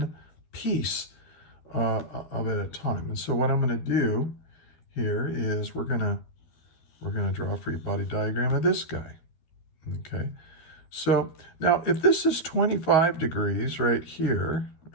piece of it at a time. And so what I'm going to do here is we're going to draw a free body diagram of this guy. Okay. So now if this is 25 degrees right here,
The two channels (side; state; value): right; late; 13 ms